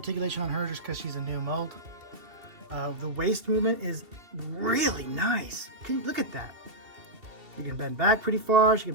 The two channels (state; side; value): late; left; 2.7 ms